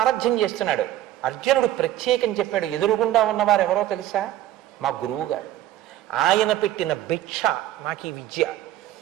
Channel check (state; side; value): quieter; left; 13.4 dB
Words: చేస్తున్నాడు. అర్జునుడు ప్రత్యేకం చెప్పాడు, ఎదురుగుండా ఉన్నవారు ఎవరో తెలుసా? మా గురువు గారు. ఆయన పెట్టిన భిక్ష నాకు ఈ విద్య.